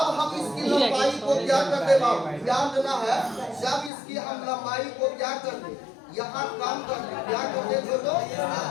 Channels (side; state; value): right; drops out; at 3.9 s